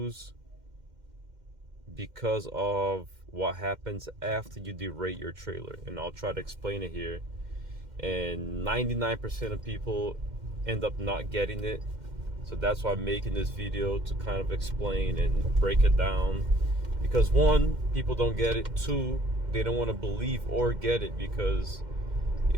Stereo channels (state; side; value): late; left; 2.1 ms